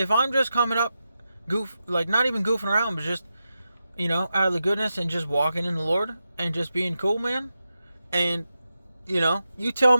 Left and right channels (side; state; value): both; inverted; correlation -0.89